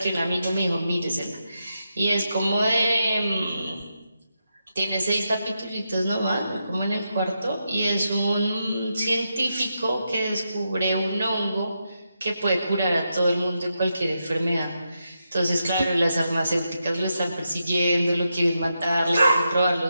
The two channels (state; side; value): inverted; both; correlation -0.85